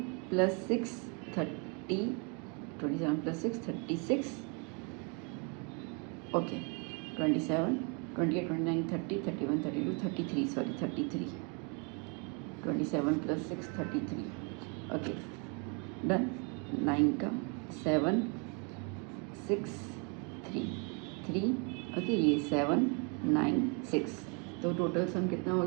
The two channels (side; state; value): left; quieter; 35.0 dB